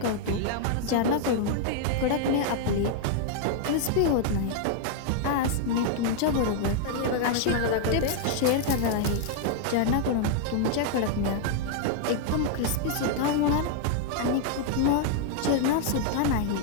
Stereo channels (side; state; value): both; different; correlation 0.00